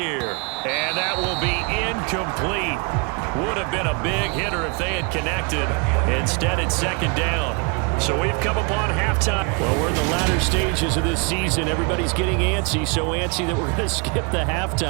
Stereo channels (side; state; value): left; quieter; 32.6 dB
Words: And that will be incomplete. Would have been a big hitter if they had connected. Instead, it's second down. So we've come upon halftime. Well, we're in the latter stages of this season. Everybody's getting antsy, so antsy that we're going to skip the